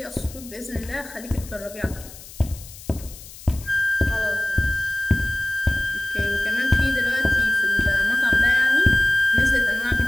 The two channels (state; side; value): noise; left; hiss, 17 dB below the sound